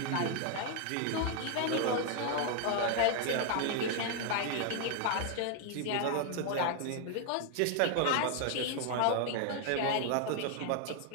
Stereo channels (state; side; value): different; both; correlation 0.00